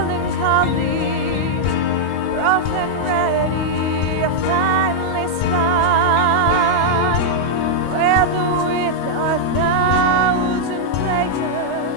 rough and ready, finely spun, whether with a thousand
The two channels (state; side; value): late; right; 21 ms